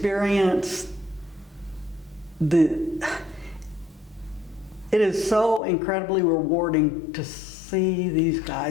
it is so incredibly rewarding to see these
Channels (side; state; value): right; drops out; at 5.6 s